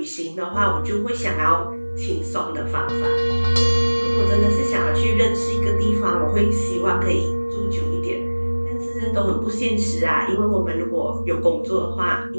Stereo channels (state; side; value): inverted; both; correlation -1.00